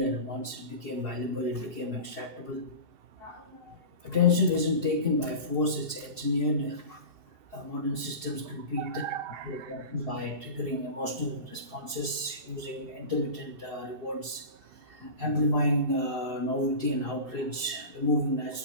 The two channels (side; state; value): left; late; 2.7 ms